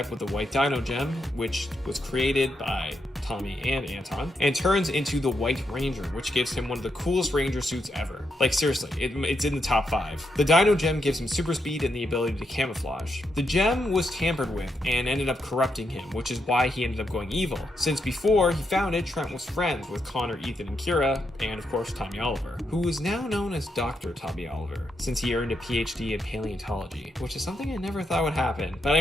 with the White Dino Gem, which was created by Tommy and Anton, and turns into the White Ranger, which gives him one of the coolest Ranger suits ever. Like seriously, it's in the top 5. The Dino Gem gives him super speed and the ability to camouflage. The gem was tampered with and ended up corrupting him, which is why he ended up going evil, since before he found it, Trent was friends with Connor, Ethan, and Kira, and of course Tommy Oliver, who is now known as Dr. Tommy Oliver, since he earned a PhD in paleontology, which is something I never thought would happen. But I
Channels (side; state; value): both; normal; correlation 0.82